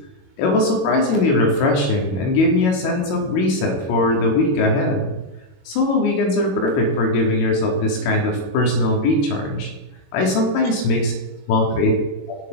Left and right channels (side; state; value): right; late; 22 ms